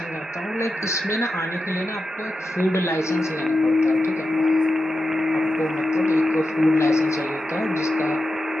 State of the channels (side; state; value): both; normal; correlation 0.90